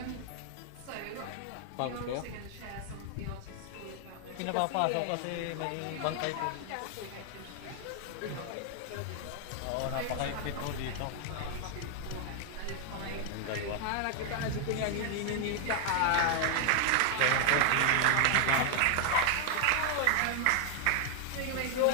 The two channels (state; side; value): different; both; correlation 0.00